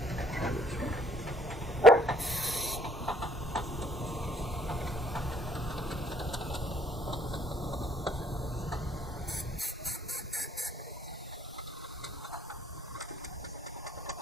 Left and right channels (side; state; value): both; normal; correlation 0.61